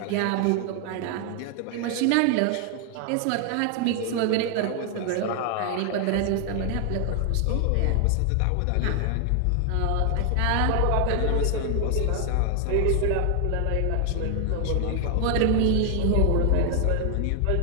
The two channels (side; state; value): both; different; correlation 0.00